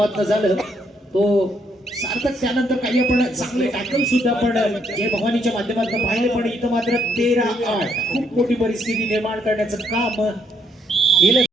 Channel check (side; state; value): both; normal; correlation 0.72